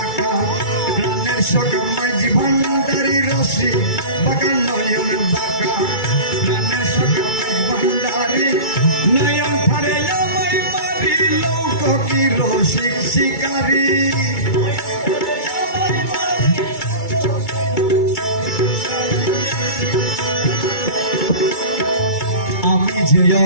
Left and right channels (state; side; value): late; right; 2.3 ms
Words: প্রাণের সখা মাঝি ভান্ডারি রশি বাঁকা নয়ন বাঁকা প্রাণের সখা মাঝি ভান্ডারি নয়ন ফারে আমায় মারি লোক কি রসিক শিকারী আমি যে